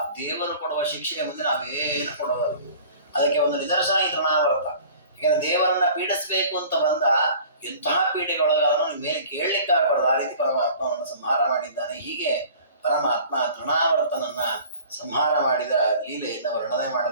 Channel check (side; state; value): both; inverted; correlation -0.46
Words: ದೇವರು ಕೊಡುವ ಶಿಕ್ಷೆಯ ಮುಂದೆ ನಾವೇನು ಕೊಡೋದಲ್ಲ. ಅದಕ್ಕೆ ಒಂದು ನಿದರ್ಶನ ಈ ತೃಣಾವರ್ತ. ಯಾಕಂದ್ರೆ ದೇವರನ್ನ ಪೀಡಿಸ್ಬೇಕು ಅಂತ ಬಂದ ಎಂತಹ ಪೀಡೆಗೊಳಗಾದ್ರೂ ಮೇಲೆ ಕೇಳಲಿಕ್ಕಾಗಬಾರ್ದು, ಆ ರೀತಿ ಪರಮಾತ್ಮವನ್ನು ಸಂಹಾರ ಮಾಡಿದ್ದಾನೆ. ಹೀಗೆ ಪರಮಾತ್ಮ ತೃಣಾವರ್ತನನ್ನ ಸಂಹಾರ ಮಾಡಿದ ಲೀಲೆಯಿಂದ ವರ್ಣನೆ